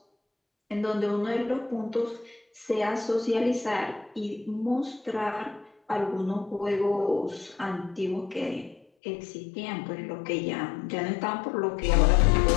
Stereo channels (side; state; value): right; drops out; at 8.8 s